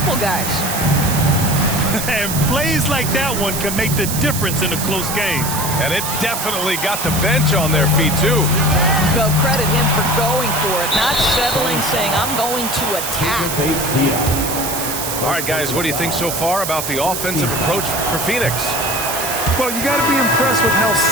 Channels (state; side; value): noise; right; hiss, 4 dB below the sound